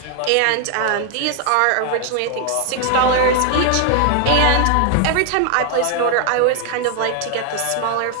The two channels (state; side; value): different; both; correlation 0.00